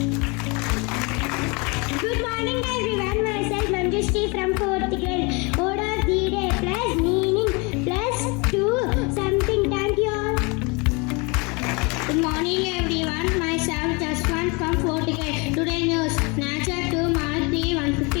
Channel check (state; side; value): quieter; right; 29.3 dB